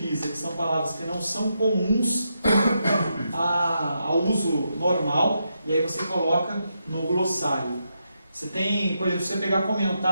que são palavras que não são comuns ao uso normal, e aí você coloca no glossário. Você tem, por exemplo, se você pegar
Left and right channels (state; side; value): inverted; both; correlation -0.83